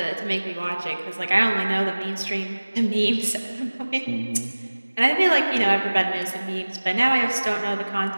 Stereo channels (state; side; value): inverted; both; correlation -1.00